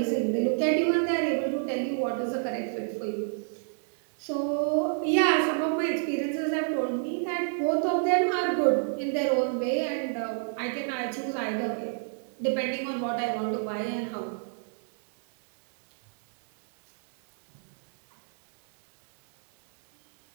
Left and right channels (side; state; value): left; silent; digital silence